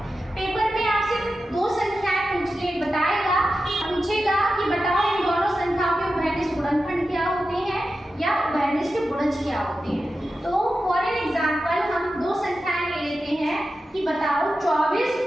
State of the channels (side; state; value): both; normal; correlation 0.91